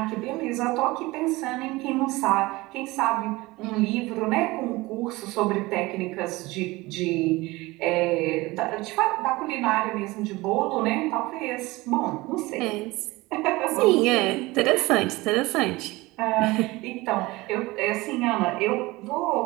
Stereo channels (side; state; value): left; quieter; 21.1 dB